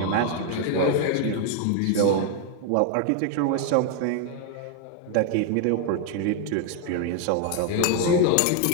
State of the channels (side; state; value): both; different; correlation 0.00